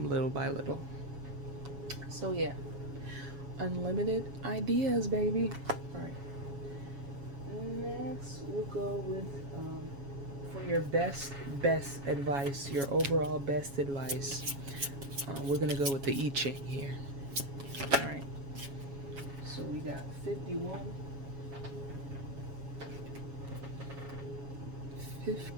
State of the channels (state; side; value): late; left; 7.2 ms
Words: little by little. So yeah, unlimited ideas, baby. All right, next we'll go with for your best advice, your overall best advice. We're gonna go with the I Ching here. All right, so we got 51,